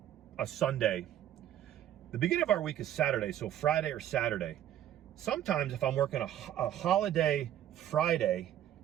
Sunday, the beginning of our week is Saturday, so Friday or Saturday. Sometimes if I'm working a holiday Friday,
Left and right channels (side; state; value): left; quieter; 11.5 dB